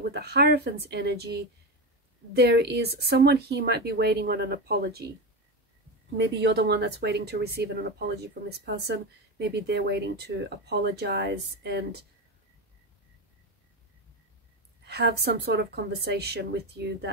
with the Hierophant's energy, there is someone here might be waiting on an apology. Maybe you're the one that's waiting to receive an apology from this person. Maybe they're waiting to apologize and have some sort of conversation with you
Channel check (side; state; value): both; normal; correlation 0.18